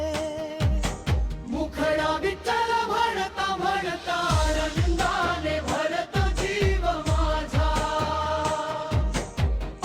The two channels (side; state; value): both; identical; correlation 1.00